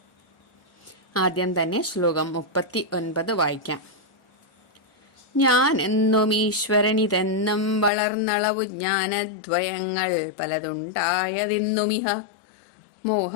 ആദ്യം തന്നെ ശ്ലോകം 39 വായിക്കാം. ഞാൻ എന്നും ഈശ്വരനിതെന്നും വളർന്നളവു ജ്ഞാനദ്വയങ്ങൾ പലതുണ്ടായതിന്നുമിഹ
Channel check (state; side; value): drops out; right; at 7.9 s